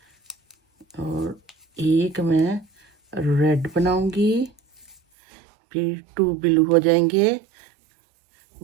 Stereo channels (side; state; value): left; drops out; at 5.0 s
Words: और 1 मैं रेड बनाऊंगी, फिर 2 बिलू हो जाएंगे,